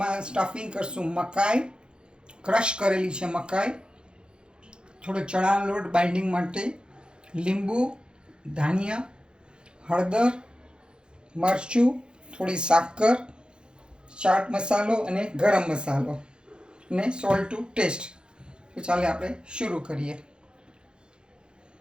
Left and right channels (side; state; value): left; late; 0.050 ms